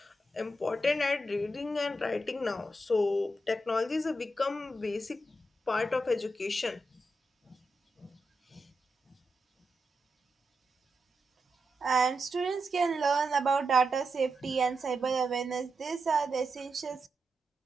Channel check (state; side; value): normal; both; correlation 0.86